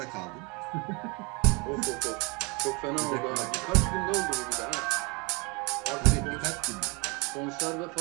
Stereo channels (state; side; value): quieter; left; 29.3 dB